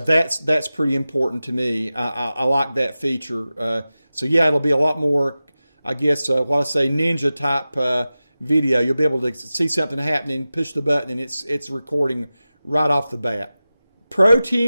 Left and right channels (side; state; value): both; inverted; correlation -0.95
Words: pretty important to me. I like that feature. So yeah, it'll be a lot more, I guess, what I say, ninja type video. You'll be able to see something happening, push the button, and it's recording right off the bat.